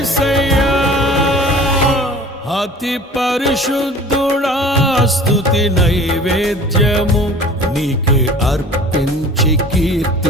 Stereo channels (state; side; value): normal; both; correlation 0.44